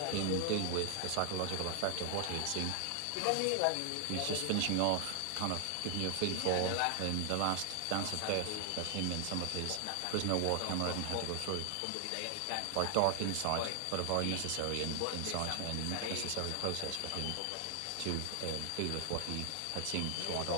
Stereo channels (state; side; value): different; both; correlation 0.00